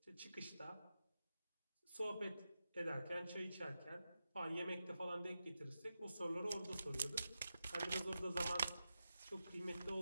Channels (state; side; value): inverted; both; correlation -0.90